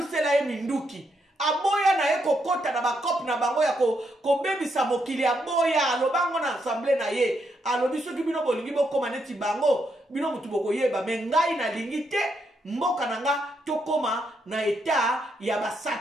ye minduki. Aboya na ye kokota na bakop na bango ya kobebisa mokili aboya alobango na assemblée na ye alobi soki bino bolingi bokoma neti bango bino mutu bokoyeba me ngai na lingi te mboka na nga tokoma na eta ya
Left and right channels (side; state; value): both; normal; correlation 0.78